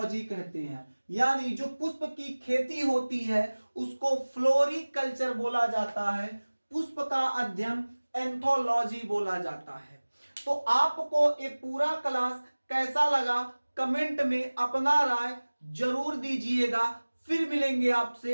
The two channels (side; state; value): both; inverted; correlation -1.00